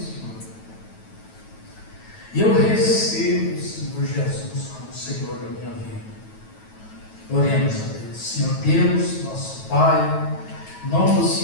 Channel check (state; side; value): late; right; 9.2 ms